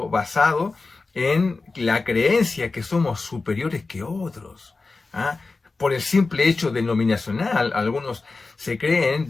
basado en la creencia que somos superiores que otros. ¿Ah? Por el simple hecho denominacional, algunos se creen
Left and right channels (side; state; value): right; quieter; 3.8 dB